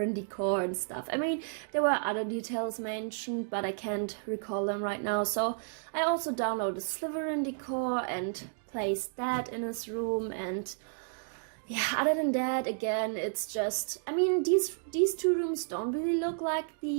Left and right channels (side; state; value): left; silent; digital silence